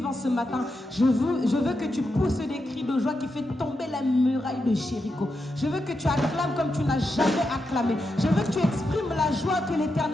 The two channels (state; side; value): normal; both; correlation 0.86